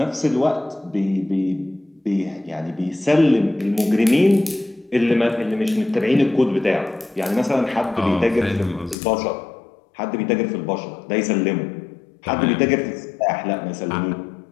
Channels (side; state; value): right; drops out; at 9.0 s